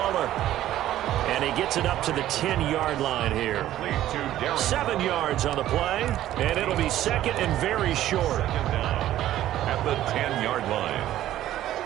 And he gets it up to the 10-yard line here. 7 yards on the play, and it'll be second and very short. At the 10-yard line.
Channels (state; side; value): quieter; left; 13.2 dB